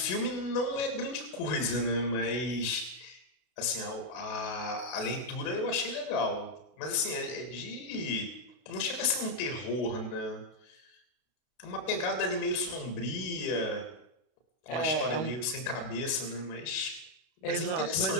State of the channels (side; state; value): right; late; 32 ms